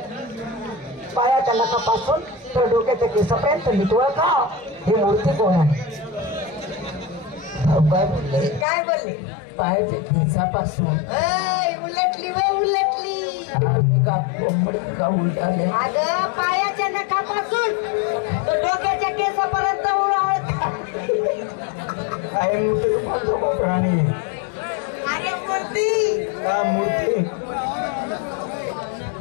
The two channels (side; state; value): right; drops out; at 8.7 s